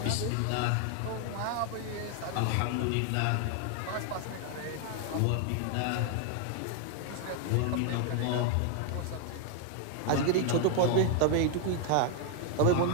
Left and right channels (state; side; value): different; both; correlation 0.00